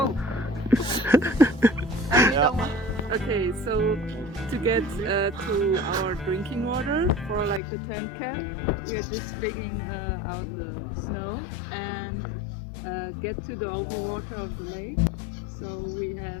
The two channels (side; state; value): right; drops out; at 7.6 s